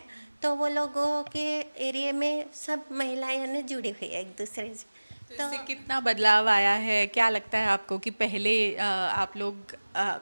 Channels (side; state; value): both; inverted; correlation -1.00